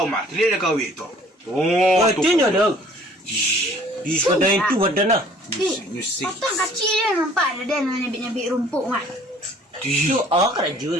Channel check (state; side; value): normal; both; correlation 0.55